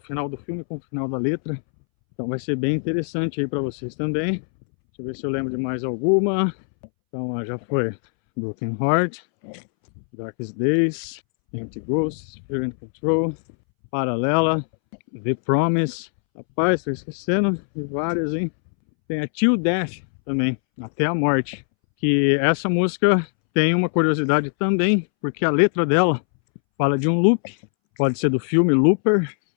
do filme com o final da letra. Então vai ser bem interessante aí para vocês também. Deixa eu ver se eu lembro de mais alguma. Então já foi Broken Heart, Darkest Days, Empty Ghosts, Fear and Control, Paralela, The Promise. Rapaz, estou esquecendo de várias, hein? Tem a Till Death também, Até a Morte. Que essa música tem uma curiosidade também, porque a letra dela fala de um loop, pode ser do filme Looper,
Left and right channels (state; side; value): silent; right; 64 dB below the other